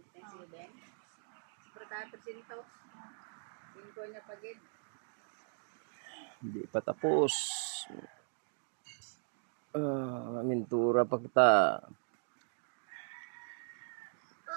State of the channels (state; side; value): silent; left; digital silence